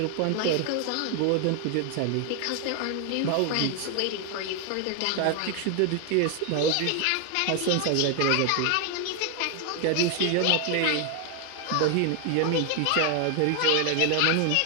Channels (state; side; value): different; both; correlation 0.00